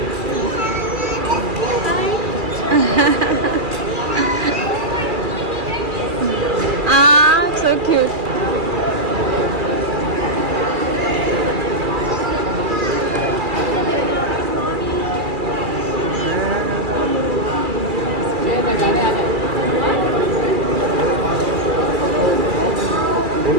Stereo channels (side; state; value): left; late; 2.4 ms